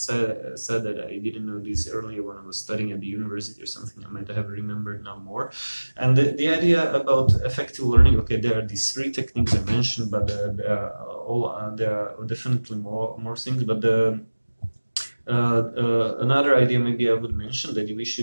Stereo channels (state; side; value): inverted; both; correlation -1.00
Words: that I didn't know this earlier when I was studying at the university or something. I might have remembered now more. And the idea about effective learning, okay, there are these three techniques I mentioned, but there are definitely more things. But another idea maybe I would mention, that we